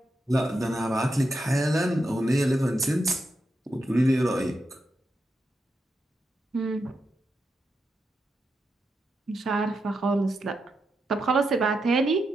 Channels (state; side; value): normal; both; correlation 0.85